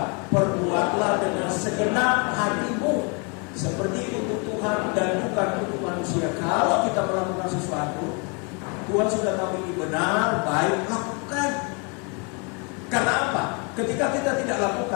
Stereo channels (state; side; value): quieter; right; 33.4 dB